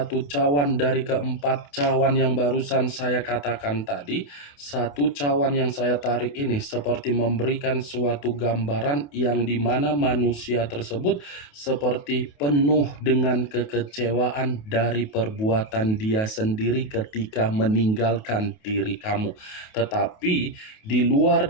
cawan dari keempat cawan yang barusan saya katakan tadi, satu cawan yang saya tarik ini seperti memberikan suatu gambaran yang dimana manusia tersebut seperti penuh dengan kekecewaan dari perbuatan dia sendiri ketika meninggalkan diri kamu. Tetapi di luar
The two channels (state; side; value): late; right; 28 ms